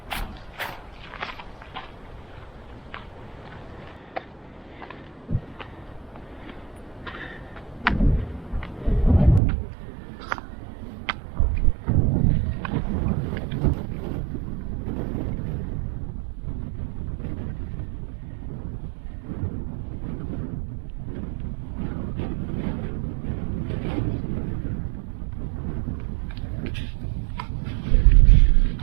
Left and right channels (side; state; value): left; drops out; at 9.4 s